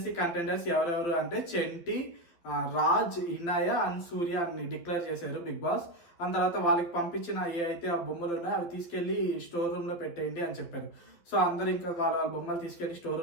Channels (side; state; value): right; late; 12 ms